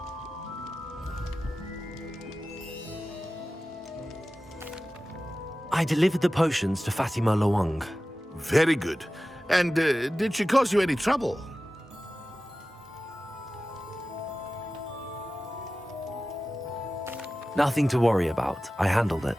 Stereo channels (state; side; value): normal; both; correlation 0.95